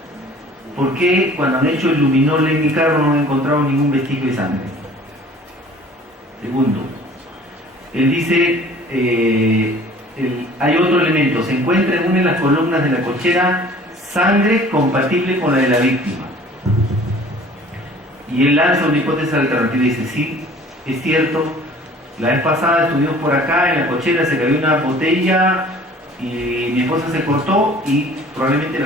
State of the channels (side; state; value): both; normal; correlation 0.50